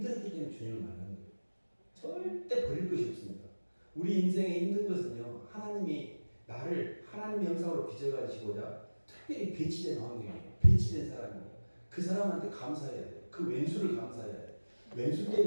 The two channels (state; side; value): inverted; both; correlation -1.00